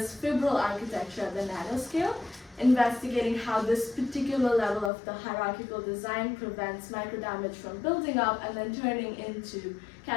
fibril architecture at the nanoscale, investigating how this particular level of the hierarchical design prevents microdamage from building up and then turning into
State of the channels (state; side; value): drops out; right; at 4.9 s